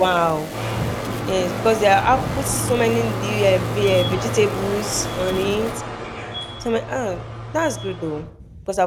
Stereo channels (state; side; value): identical; both; correlation 1.00